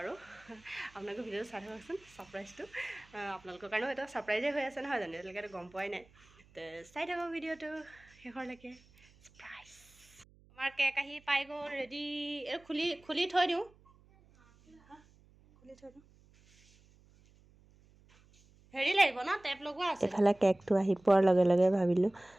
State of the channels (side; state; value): right; noise; hum, 28 dB below the sound